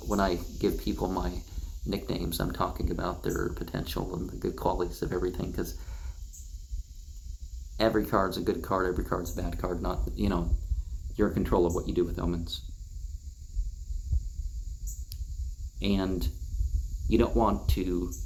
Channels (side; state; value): both; identical; correlation 1.00